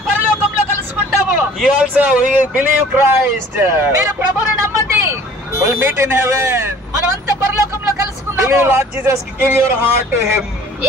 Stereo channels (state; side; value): normal; both; correlation 0.50